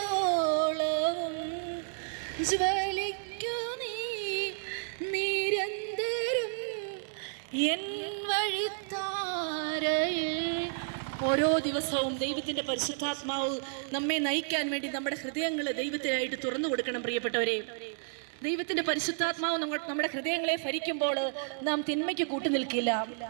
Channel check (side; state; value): left; silent; 57 dB below the other